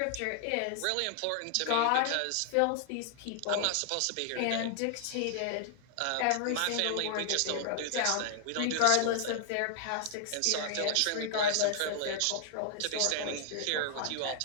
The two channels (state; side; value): different; both; correlation 0.00